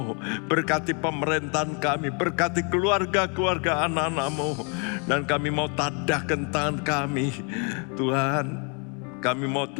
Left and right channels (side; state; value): right; quieter; 36.5 dB